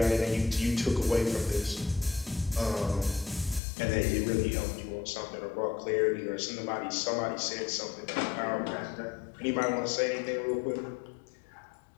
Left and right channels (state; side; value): drops out; right; at 3.6 s